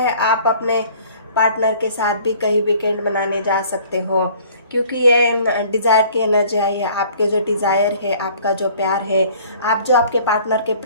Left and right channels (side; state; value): both; inverted; correlation -0.54